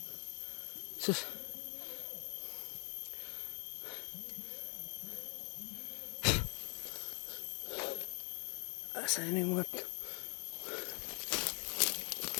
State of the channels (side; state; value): right; quieter; 36.1 dB